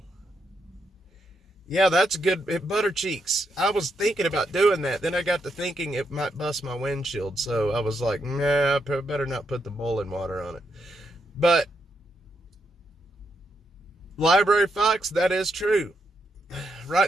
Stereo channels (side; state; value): both; normal; correlation 0.80